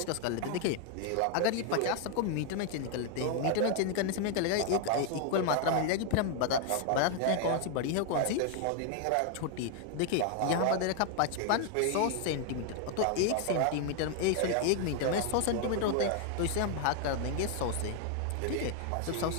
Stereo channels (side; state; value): both; different; correlation 0.00